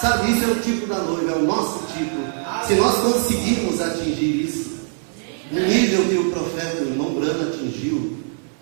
isso é o tipo da noiva, é o nosso tipo. Se nós conseguimos atingir isso, no nível que o profeta, o irmão Brana atingiu,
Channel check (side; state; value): left; silent; 64 dB below the other